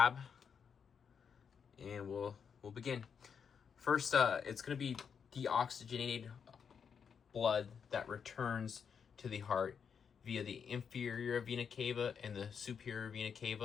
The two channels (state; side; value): quieter; right; 6.8 dB